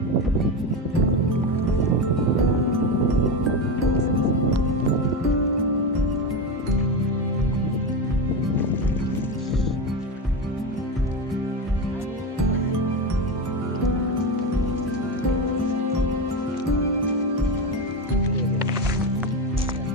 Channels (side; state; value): both; normal; correlation 0.16